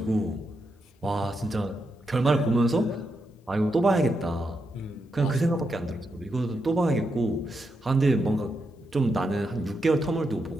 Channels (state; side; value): normal; both; correlation 0.84